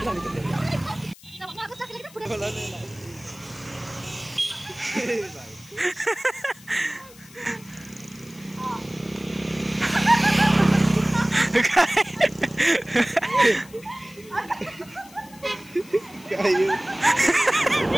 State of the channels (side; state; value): left; noise; hiss, 22 dB below the sound